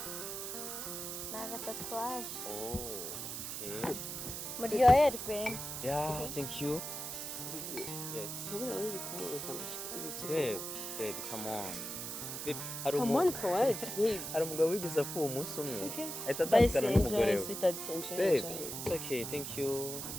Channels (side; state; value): right; noise; hiss, 6 dB below the sound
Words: Ni agatatuwaje. Oh, okay. Muryoherwe. Yeah, thank you. Yes. Ntubura uri kumubuza ibiki. Babe, come on. Babe, Come on for what, babe? hari umugabo wigeze apfuye umunsi umwe. Okay. Ahita Bye, atandukana n'umugore enjoy, we. sweetheart, enjoy. Babe, it's okay, thank you.